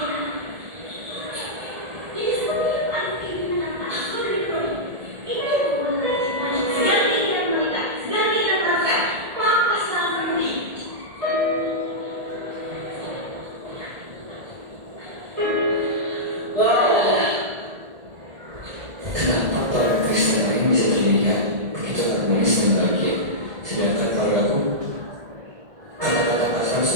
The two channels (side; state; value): left; late; 1.7 ms